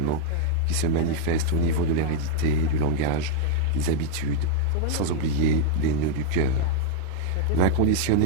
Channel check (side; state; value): both; different; correlation -0.01